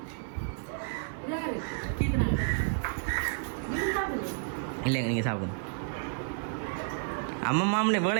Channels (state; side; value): silent; left; digital silence